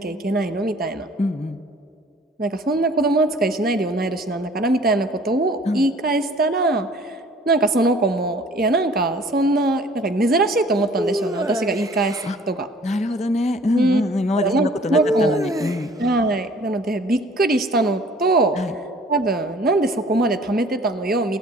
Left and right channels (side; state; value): both; normal; correlation 0.52